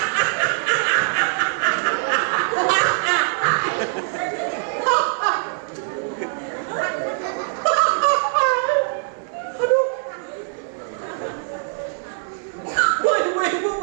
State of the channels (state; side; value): silent; left; 58 dB below the other